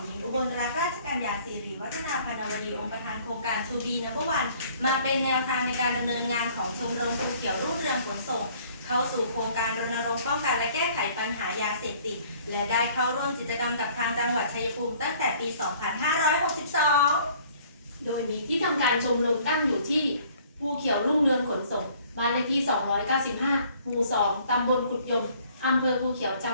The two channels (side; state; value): both; inverted; correlation -0.57